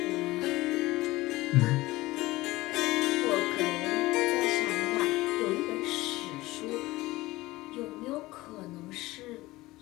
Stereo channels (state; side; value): quieter; right; 19.1 dB